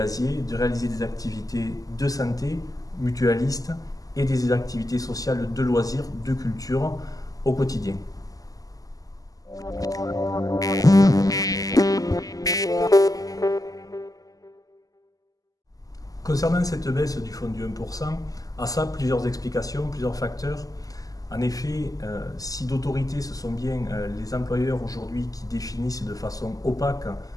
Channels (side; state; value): right; late; 0.17 ms